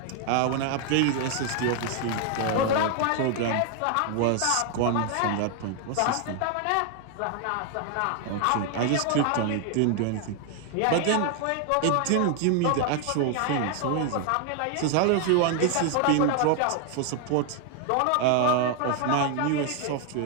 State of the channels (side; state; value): both; different; correlation 0.00